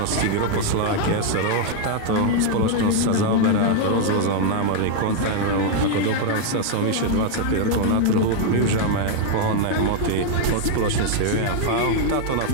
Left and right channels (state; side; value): different; both; correlation 0.00